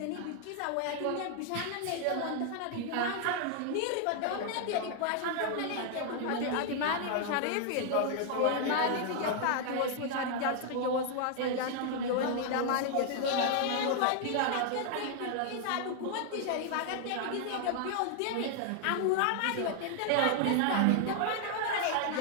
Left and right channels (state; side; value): different; both; correlation 0.00